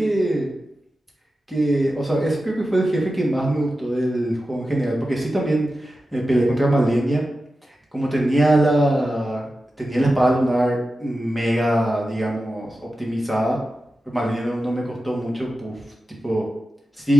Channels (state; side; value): normal; both; correlation 0.93